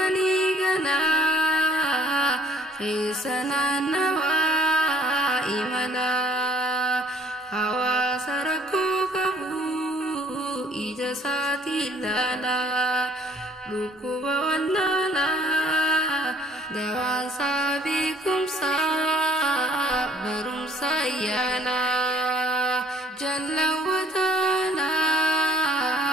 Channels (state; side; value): normal; both; correlation 0.58